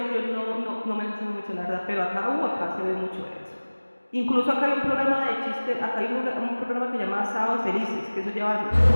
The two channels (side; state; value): both; inverted; correlation -1.00